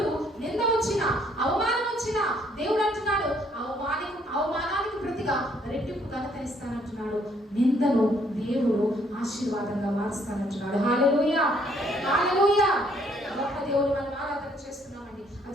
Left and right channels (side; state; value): both; normal; correlation 0.66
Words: నింద వచ్చిన, అవమానం వచ్చిన, దేవుడు అంటున్నాడు అవమానానికి ప్రతిగా రెట్టింపు ఘనత ఇస్తానంటున్నాడు. నిందను దేవుడు ఆశీర్వాదంగా మారుస్తానంటున్నాడు. హల్లెలూయా, హల్లెలూయా. గొప్ప దేవుడు మనం ఆరాధన చేస్తున్నామండి.